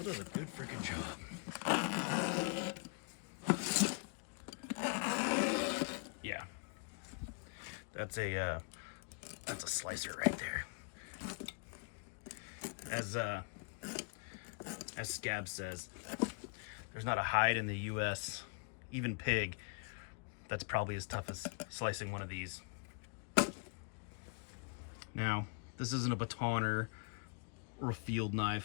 does a good freaking job. Yeah, that's a slicer right there. As Scab says, there's not a hide in the U.S., even pig, that's probably as tough as slicing one of these. Now, this isn't a batoner or a field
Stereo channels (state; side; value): quieter; right; 39.3 dB